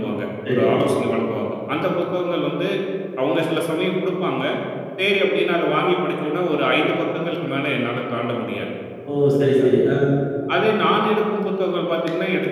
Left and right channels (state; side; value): identical; both; correlation 1.00